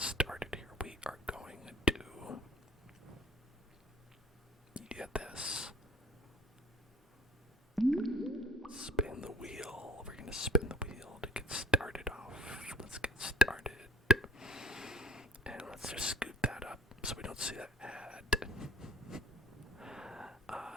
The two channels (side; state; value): both; normal; correlation 0.49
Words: here, we are going to get this. Spin the wheel. We're going to spin the wheel to get started off. Let's get started. And let's just scoot that up so we don't see that ad.